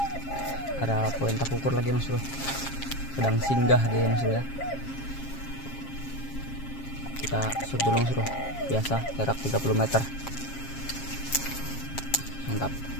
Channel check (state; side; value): late; right; 7.4 ms